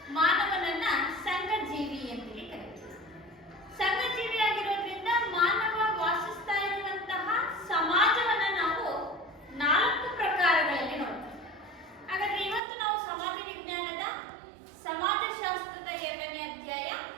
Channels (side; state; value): left; drops out; at 12.6 s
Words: ಮಾನವನನ್ನ ಸಂಘಜೀವಿ ಅಂತೇಳಿ ಕರೀತೀವಿ. ಸಂಘಜೀವಿ ಆಗಿರೋದ್ರಿಂದ ಮಾನವ ವಾಸಿಸ್ತಾ ಇರುವಂತಹ ಸಮಾಜವನ್ನ ನಾವು 4 ಪ್ರಕಾರಗಳಲ್ಲಿ ನೋಡ್ತೀವಿ. ಹಾಗಾದ್ರೆ ಇವತ್ತು ನಾವು ಸಮಾಜ ವಿಜ್ಞಾನದ ಸಮಾಜಶಾಸ್ತ್ರದ 2ನೇ ಅಧ್ಯಾಯ